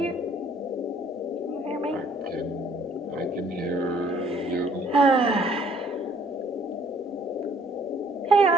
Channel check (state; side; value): normal; both; correlation 0.60